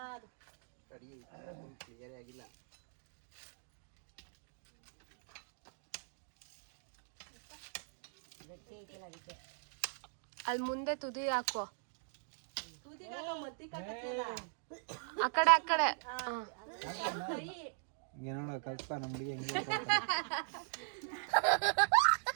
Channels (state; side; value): silent; left; digital silence